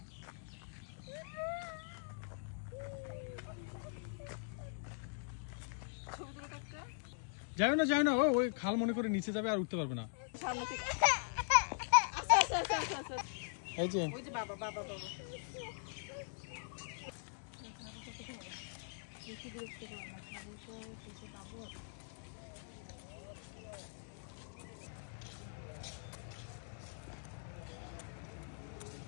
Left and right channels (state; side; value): silent; right; digital silence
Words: যাও না, ওই খাল মনে করে নিচে যাবে আর উঠতে পারবে না। এই যে বাবা বাবা বাবা